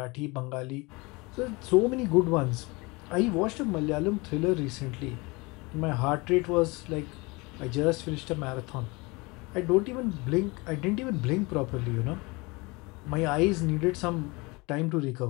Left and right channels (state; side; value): quieter; right; 25.6 dB